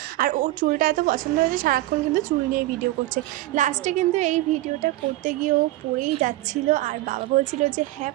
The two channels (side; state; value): left; quieter; 17.2 dB